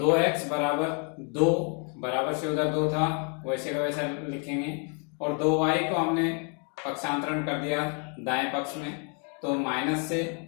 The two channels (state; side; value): quieter; right; 38.6 dB